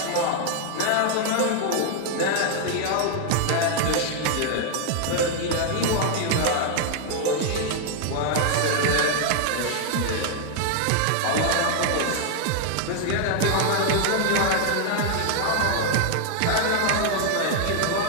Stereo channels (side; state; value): both; different; correlation 0.00